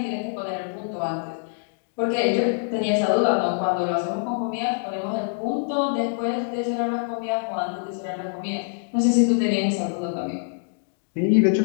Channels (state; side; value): silent; right; digital silence